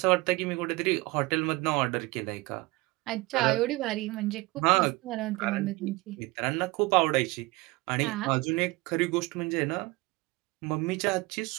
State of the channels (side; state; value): left; quieter; 22.5 dB